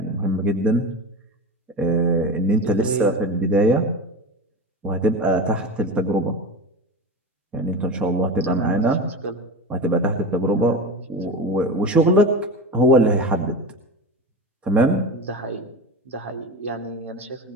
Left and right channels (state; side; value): normal; both; correlation 0.25